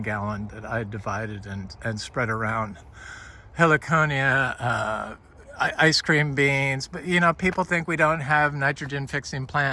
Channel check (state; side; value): identical; both; correlation 1.00